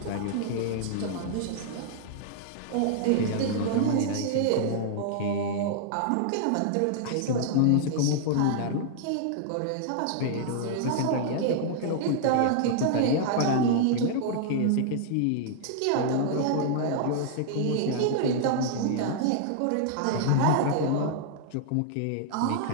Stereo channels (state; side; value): different; both; correlation -0.01